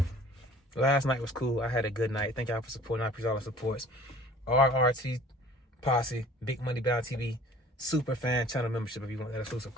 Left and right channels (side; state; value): both; normal; correlation 0.49